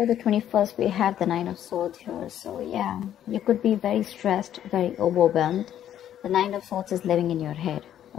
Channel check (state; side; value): quieter; right; 10.8 dB